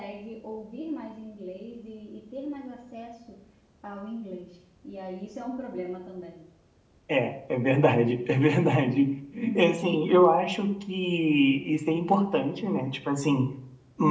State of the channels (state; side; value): identical; both; correlation 1.00